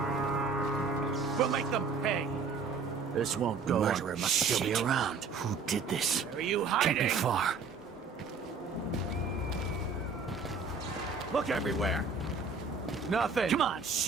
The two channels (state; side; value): quieter; left; 4.8 dB